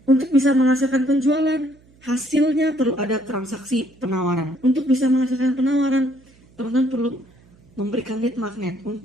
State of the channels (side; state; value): right; noise; hum, 29 dB below the sound